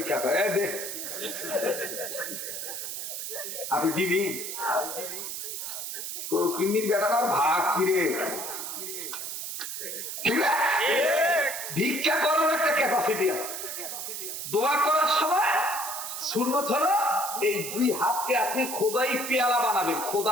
করে, দেখ আপনি দিবি কিন্নির বেটার ভাগ কিরে, ঠিক আছে? ভিক্ষা করার একটা ক্যাপাসিটি আছে। দোয়া করার সময় সুন্নত হলো এই দুই হাতকে আপনি খোদাই পেয়ালা বানাবেন,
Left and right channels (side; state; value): right; noise; hiss, 6 dB below the sound